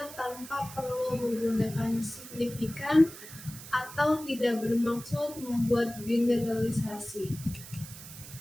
tanpa perlu menggunakan signifikan atau tidak bermaksud membuat generalisasi.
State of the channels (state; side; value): noise; right; hiss, 14 dB below the sound